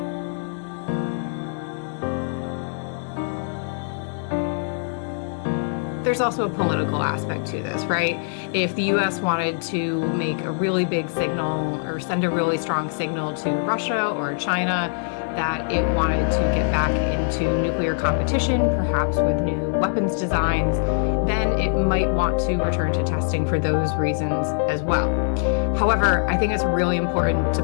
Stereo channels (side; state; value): right; silent; digital silence